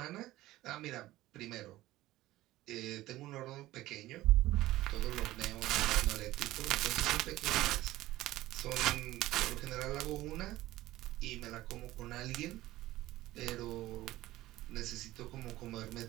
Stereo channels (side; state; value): left; quieter; 16.5 dB